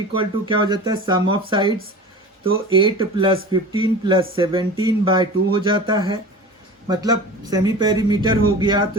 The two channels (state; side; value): normal; both; correlation 0.36